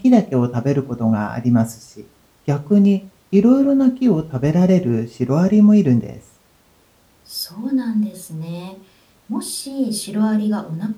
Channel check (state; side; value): identical; both; correlation 1.00